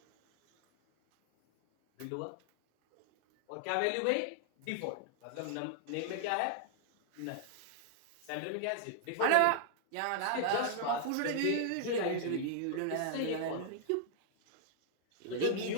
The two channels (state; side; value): different; both; correlation -0.01